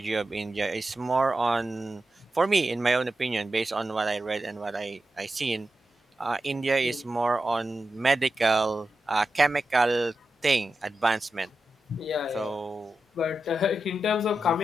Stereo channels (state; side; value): normal; both; correlation 0.90